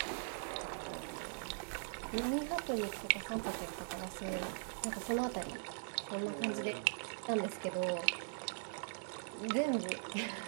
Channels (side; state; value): left; silent; digital silence